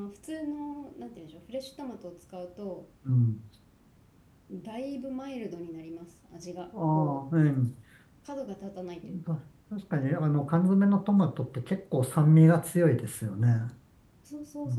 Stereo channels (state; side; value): identical; both; correlation 1.00